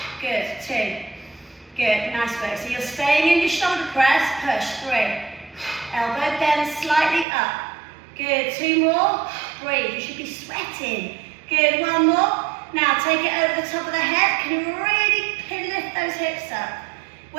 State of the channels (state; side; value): drops out; left; at 7.2 s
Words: Good, 2. Good, nice work. So you're staying in your shoulder press, push, 3. Elbow bend slightly up. Good, 2 more. Breathe, you should be sweating. Good, 1 more. Now take it over the top of the head. Can you really lift those hips up?